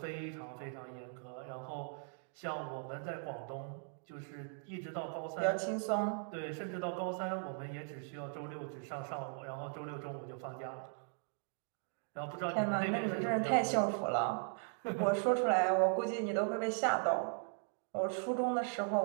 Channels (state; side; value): silent; left; 52 dB below the other